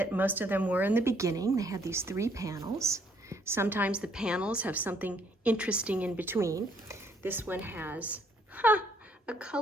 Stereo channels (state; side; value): normal; both; correlation 0.66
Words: most of them were in the beginning. They had these 3 panels. Sometimes the panels have something interesting in between. This one has a